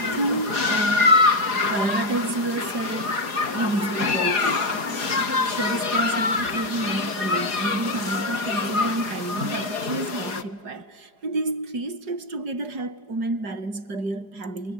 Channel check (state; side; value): late; left; 4.9 ms